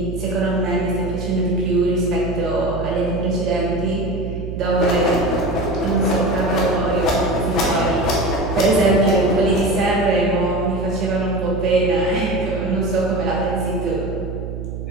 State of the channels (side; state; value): right; noise; hum, 7 dB below the sound